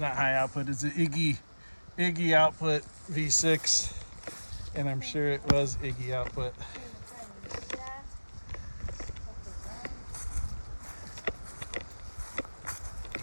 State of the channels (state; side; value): inverted; both; correlation -1.00